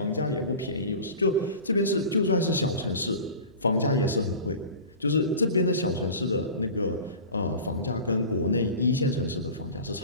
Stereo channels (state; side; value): inverted; both; correlation -0.37